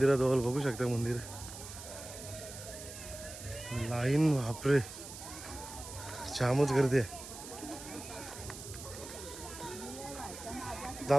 बघू शकता मंदिर लाईन बापरे जामच गर्दी आहे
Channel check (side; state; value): right; noise; hiss, 12 dB below the sound